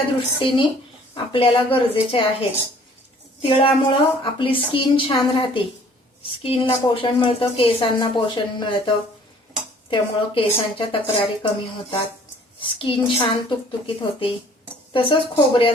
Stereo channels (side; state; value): both; normal; correlation 0.55